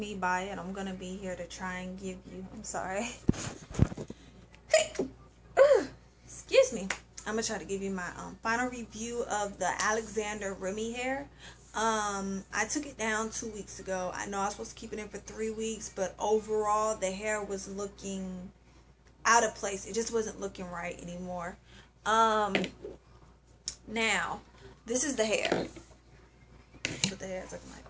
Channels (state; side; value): identical; both; correlation 1.00